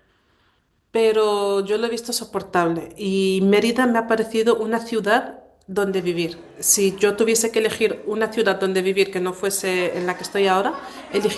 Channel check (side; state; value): both; identical; correlation 1.00